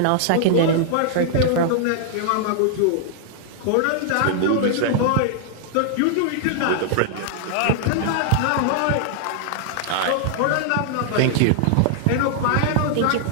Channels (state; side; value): different; both; correlation -0.01